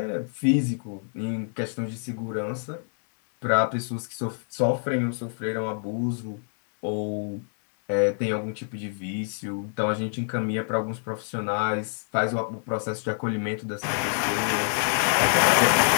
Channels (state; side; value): silent; right; 61 dB below the other